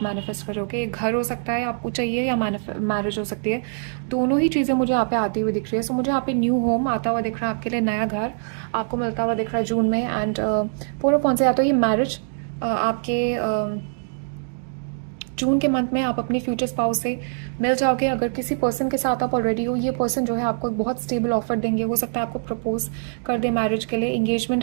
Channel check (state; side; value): silent; left; digital silence